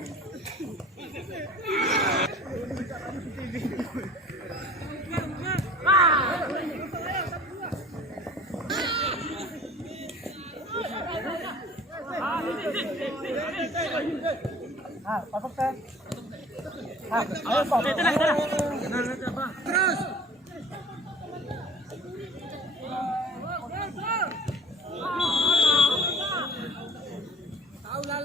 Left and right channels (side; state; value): both; normal; correlation 0.44